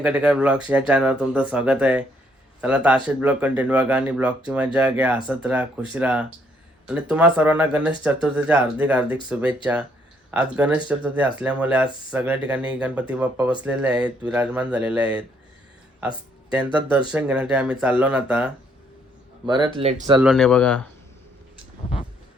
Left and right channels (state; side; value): normal; both; correlation 0.69